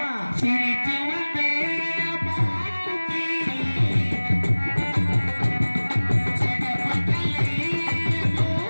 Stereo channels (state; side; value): inverted; both; correlation -1.00